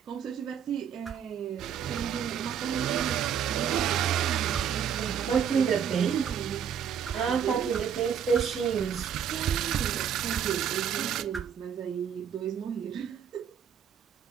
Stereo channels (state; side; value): quieter; left; 8.1 dB